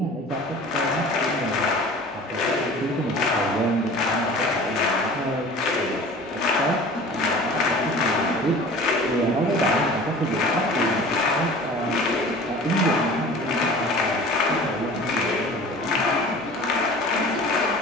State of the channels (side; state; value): both; normal; correlation 0.42